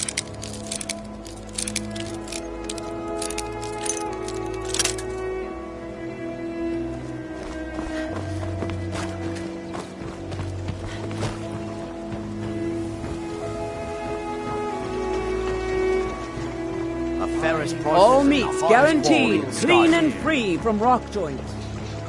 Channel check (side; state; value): both; identical; correlation 1.00